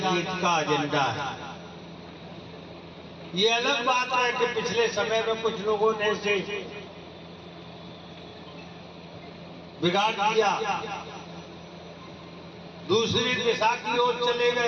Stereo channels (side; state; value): both; identical; correlation 1.00